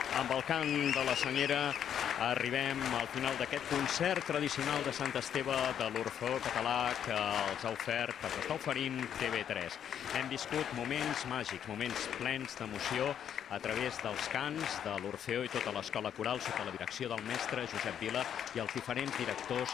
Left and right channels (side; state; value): right; quieter; 9.1 dB